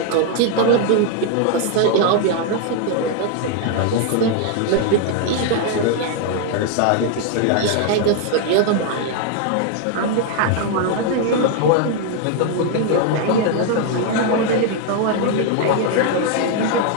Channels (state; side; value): different; both; correlation 0.00